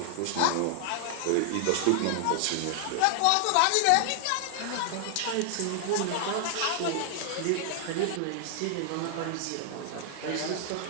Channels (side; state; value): both; different; correlation 0.00